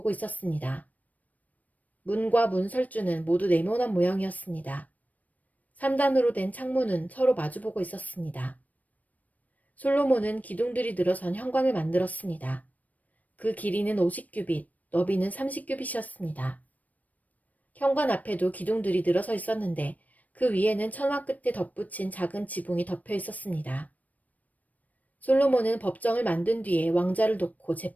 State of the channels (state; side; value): late; right; 0.074 ms